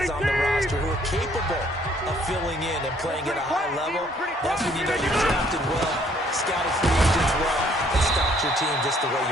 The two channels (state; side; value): normal; both; correlation 0.63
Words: on the roster who are capable of filling in and playing at a high level. That's when you know you're drafted well, scouted free agents well, and stocked your team just the way